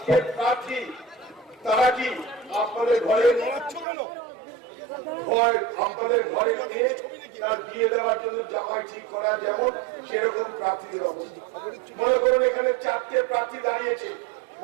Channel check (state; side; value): drops out; left; at 3.9 s